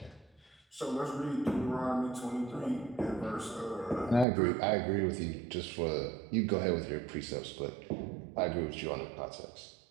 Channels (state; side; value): drops out; left; at 4.2 s